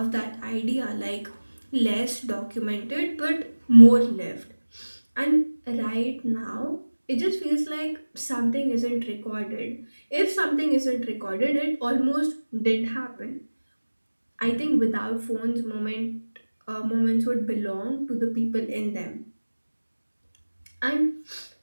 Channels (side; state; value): both; inverted; correlation -1.00